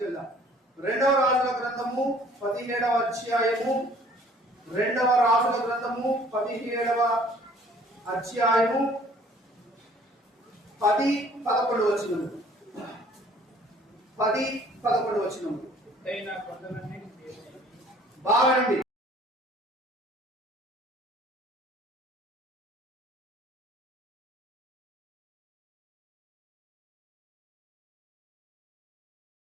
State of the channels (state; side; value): normal; both; correlation 0.55